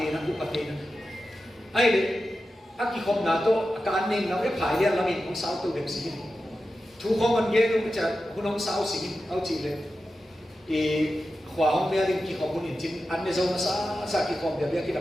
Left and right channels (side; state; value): both; normal; correlation 0.92